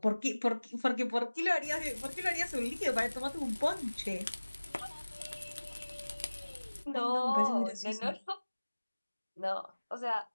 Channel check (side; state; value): both; inverted; correlation -1.00